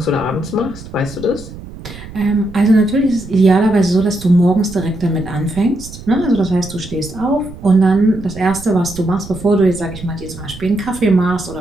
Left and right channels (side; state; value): right; noise; rumble, 15 dB below the sound